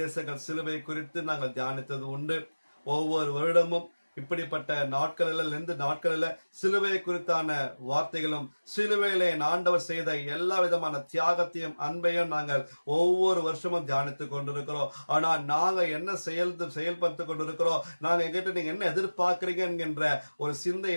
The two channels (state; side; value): inverted; both; correlation -1.00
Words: சிலுவை குறித்து நாங்கள் தியானித்தது உண்டு. ஒவ்வொரு வருடமும் இப்படிப்பட்ட நாட்களில் சிலுவை குறித்தான வார்த்தைகளும் சிலுவையில ஆண்டவர் செய்த எல்லா விதமான தியாகத்தையும் அன்பையும் நாங்கள் ஒவ்வொரு வருஷமும் தியானித்துக் கொண்டிருக்கிறோம். ஆனா நாங்க என்ன செயல்படுத்தி கொண்டிருக்கிறோம், நாங்க எங்கிட்ட நீங்க என்ன எதிர்பார்க்கிறீங்க என்கின்ற ஒரு சிந்தை